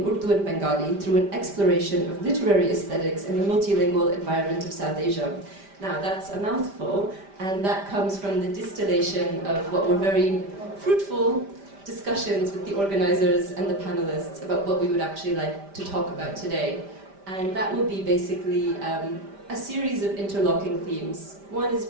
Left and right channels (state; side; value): late; left; 5.1 ms